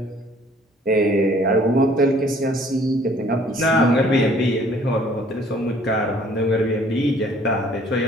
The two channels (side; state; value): both; normal; correlation 0.57